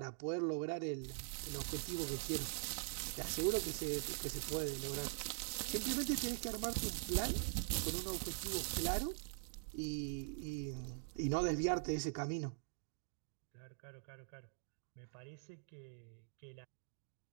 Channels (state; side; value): silent; left; digital silence